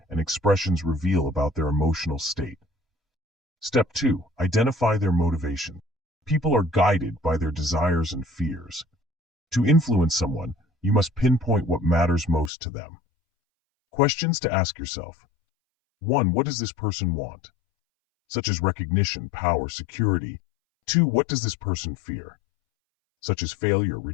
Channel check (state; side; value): drops out; right; at 12.5 s